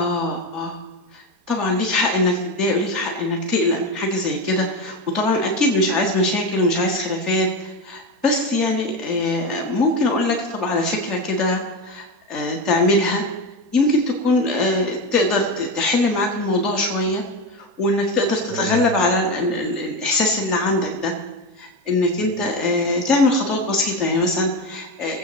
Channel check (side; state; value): left; late; 4.2 ms